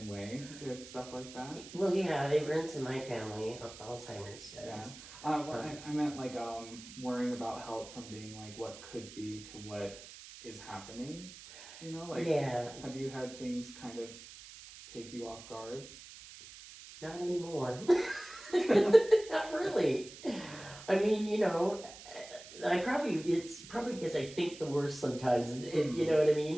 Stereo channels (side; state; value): right; noise; hiss, 16 dB below the sound